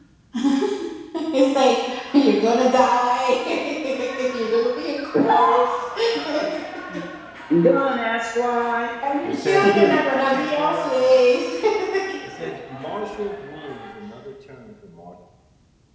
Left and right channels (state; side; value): identical; both; correlation 1.00